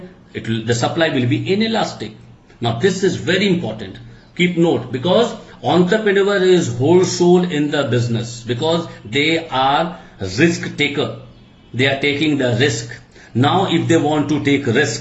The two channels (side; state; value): both; identical; correlation 1.00